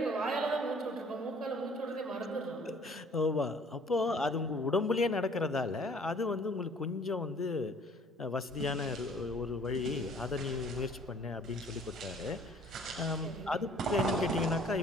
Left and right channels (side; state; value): both; normal; correlation 0.55